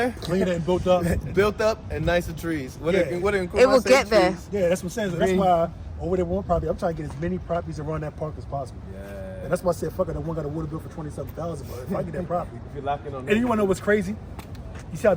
Cleaner and built up. built up, and nicer trees. What Yeah. It will get there. Yeah, that's what I'm saying. So that's why over there one property, I'm trying to get as many properties around that park as possible. Yeah. And that's why I said, fuck it, that one got a water bill for $27,000. But if I get that property, If you're locking on and you wanna know what's crazy? You see how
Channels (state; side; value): identical; both; correlation 1.00